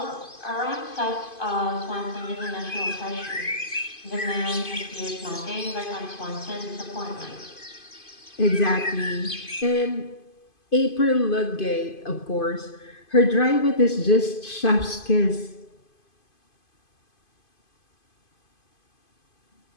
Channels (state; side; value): late; right; 2.5 ms